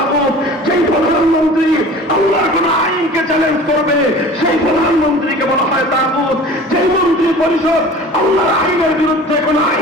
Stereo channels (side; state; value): both; normal; correlation 0.42